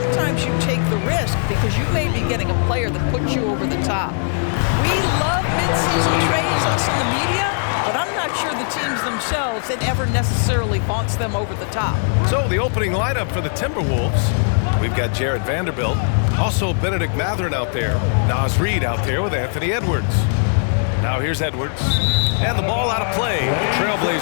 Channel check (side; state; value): right; silent; 57 dB below the other